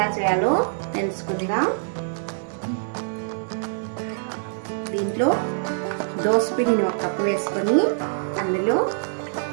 చేయాలో తెలుసుకుందాం. దీంట్లో దోసపిండిని ఒక కప్పు వేసుకొని అందులో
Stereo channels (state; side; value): silent; left; digital silence